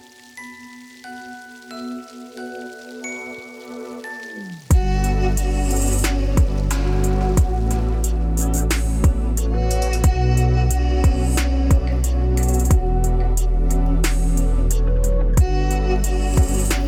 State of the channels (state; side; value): identical; both; correlation 1.00